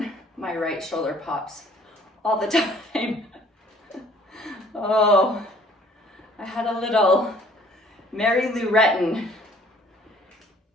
my right shoulder pops all the time. Oh, I had a little Mary Lou Retton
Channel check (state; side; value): normal; both; correlation 0.57